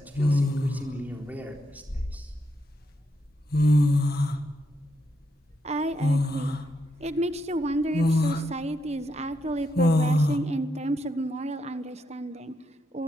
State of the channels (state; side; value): normal; both; correlation 0.81